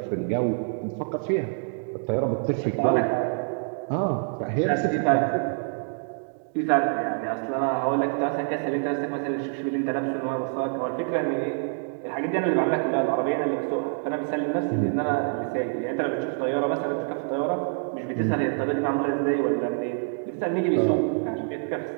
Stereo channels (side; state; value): left; silent; 61 dB below the other